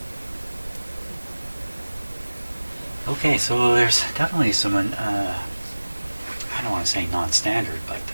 Okay, so there's definitely some, I don't want to say non-standard, but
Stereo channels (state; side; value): inverted; both; correlation -1.00